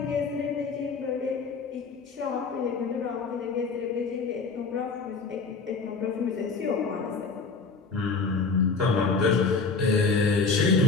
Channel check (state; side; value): quieter; right; 4.7 dB